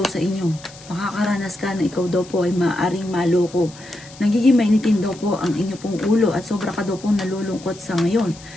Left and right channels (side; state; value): left; noise; hiss, 20 dB below the sound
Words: sa inyo. Makakaranas ka na ikaw daw po ay maaaring maloko. Nagiging mainitin daw po ang inyo pong ulo at sobra ka daw pong nalulungkot sa ngayon.